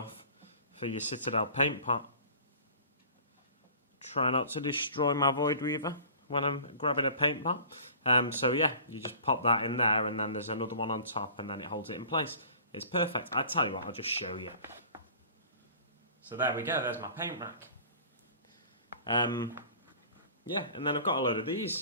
for your Citadel paint pot. Try not to destroy my Void Weaver when I'm grabbing a paint pot. So yeah, you just pop that in there, and then there's another one on top, and then it holds it in place. It's perfect. I tell you what, I'll just show you. So there we go, there's my paint rack. Yeah, and then I've got a load of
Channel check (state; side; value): inverted; both; correlation -0.45